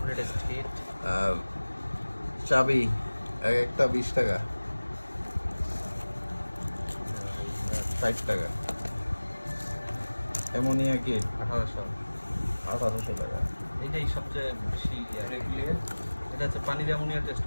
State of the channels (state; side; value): inverted; both; correlation -1.00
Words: আর চাবি এক একটা 20 টাকা, 60 টাকা। অ্যামোনিয়া কিট 1800 টাকা। এইটাই সবচেয়ে বেশি এটা হচ্ছে পানির অ্যামোনিয়া টেস্ট